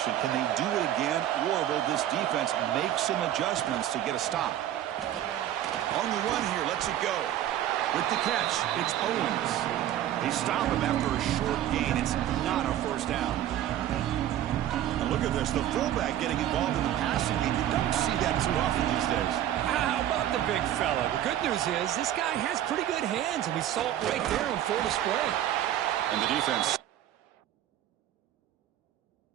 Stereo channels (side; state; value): left; quieter; 11.9 dB